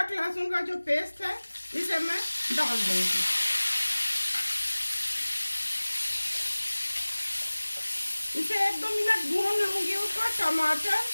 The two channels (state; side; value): inverted; both; correlation -1.00